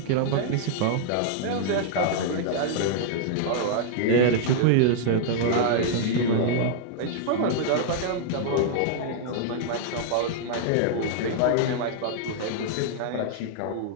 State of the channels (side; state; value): both; different; correlation -0.01